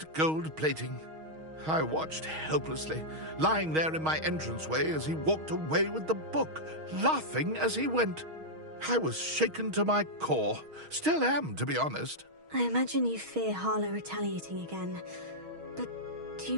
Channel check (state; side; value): late; left; 6.3 ms